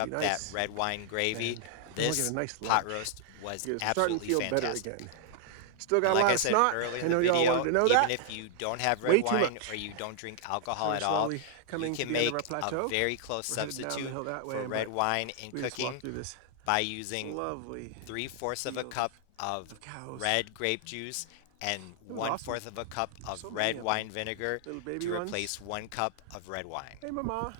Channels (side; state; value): both; different; correlation -0.01